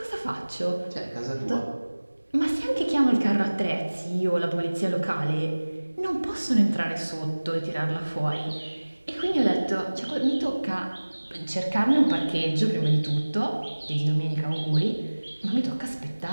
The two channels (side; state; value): both; inverted; correlation -1.00